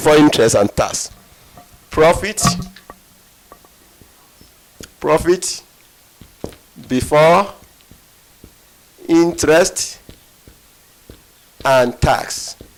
interest and tax. Profit before interest and tax.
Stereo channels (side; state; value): both; identical; correlation 1.00